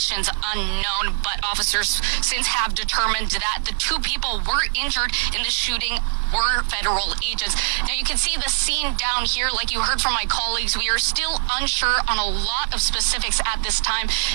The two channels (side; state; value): left; silent; 63 dB below the other